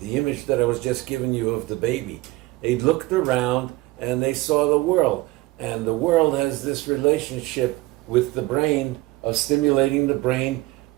image that I was just giving you of the baby, they looked around and they saw the world, and the world has this relationship with the brain of stimulating the brain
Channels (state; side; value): quieter; left; 20.1 dB